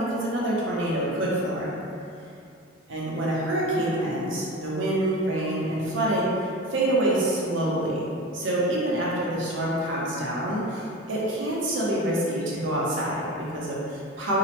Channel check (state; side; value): normal; both; correlation 0.30